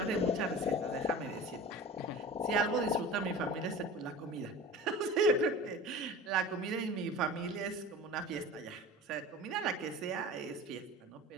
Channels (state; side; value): normal; both; correlation 0.36